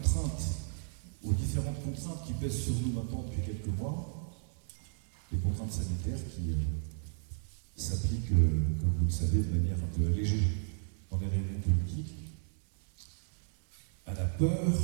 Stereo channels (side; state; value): left; silent; digital silence